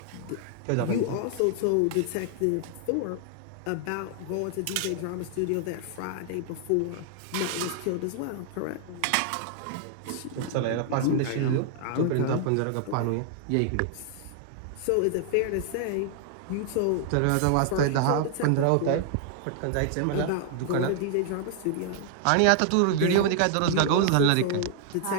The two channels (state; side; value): different; both; correlation 0.00